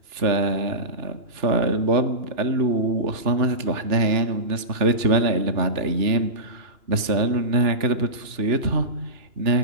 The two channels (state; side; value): late; left; 2.9 ms